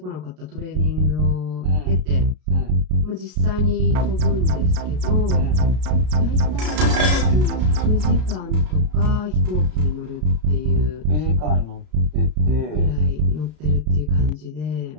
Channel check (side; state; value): left; late; 33 ms